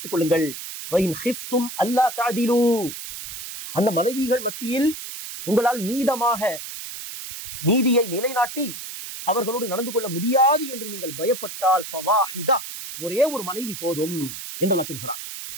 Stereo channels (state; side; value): noise; right; hiss, 9 dB below the sound